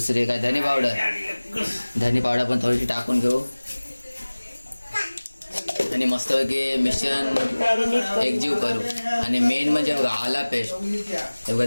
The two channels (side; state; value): both; inverted; correlation -1.00